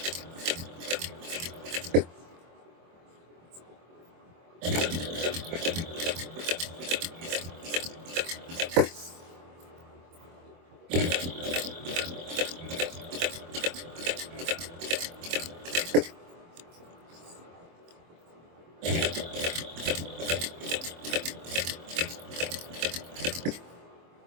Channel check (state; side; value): late; left; 24 ms